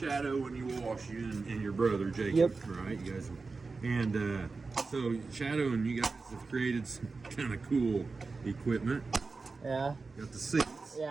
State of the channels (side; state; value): left; quieter; 4.1 dB